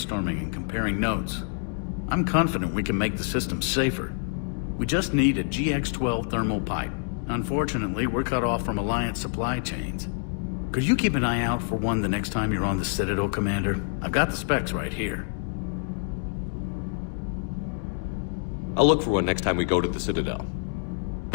and comparing notes. I'm confident we can make the system safer. We just need a GX-12 thermal pipe. Unfortunately, we're cut off from Alliance supply chains. Could you keep an eye out for one the next time you're on the Citadel, Commander? I've got the specs right here. I'll look for one next time we go to the Citadel.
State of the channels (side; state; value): right; silent; 60 dB below the other